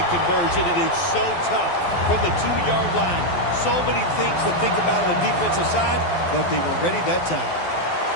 conversion. It is so tough from the 2-yard line. So many things to think about on the defensive side, but they were ready that time.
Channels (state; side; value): late; right; 12 ms